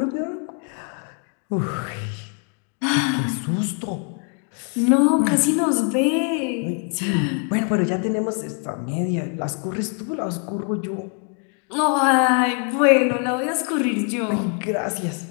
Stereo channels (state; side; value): quieter; right; 39.5 dB